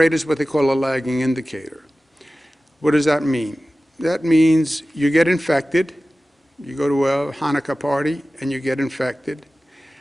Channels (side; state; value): both; normal; correlation 0.96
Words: is what they call a lagging indicator. What does that mean? That means you get infected, you go to a Hanukkah party and you get infected.